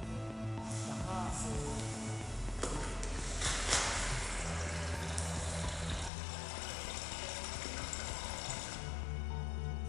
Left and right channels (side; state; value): right; drops out; at 6.1 s